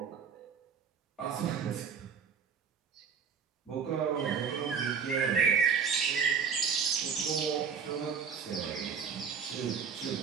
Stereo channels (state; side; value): quieter; left; 6.5 dB